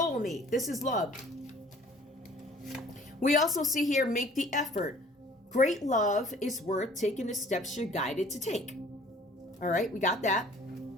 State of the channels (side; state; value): both; normal; correlation 0.52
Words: This is love. We also see here, make the effort. Great love is worth taking the steps you're guided to take. All right, we got that.